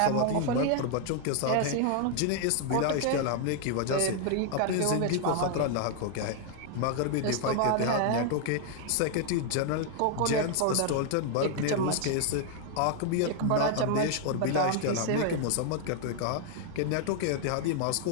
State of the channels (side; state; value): both; different; correlation 0.00